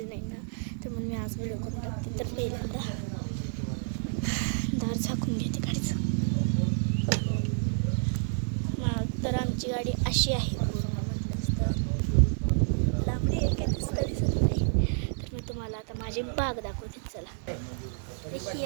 नाही ना, तर म्हणून मी आज व्हिडिओ करून टाकते. तर पहिल्यांदा दार झाकून घेते गाडीचं. तर आमची गाडी अशी आहे, लांबडी आहे, काही दिसत नाही. तर मी तुम्हाला आता माझी बाग दाखवते. चला, ही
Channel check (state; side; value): silent; left; digital silence